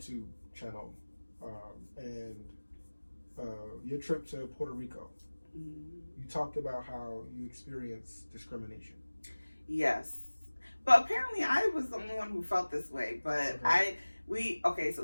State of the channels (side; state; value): both; inverted; correlation -1.00